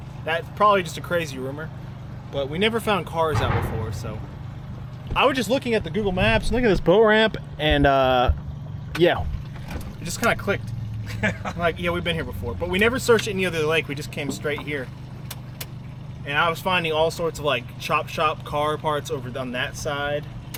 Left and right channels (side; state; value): both; identical; correlation 1.00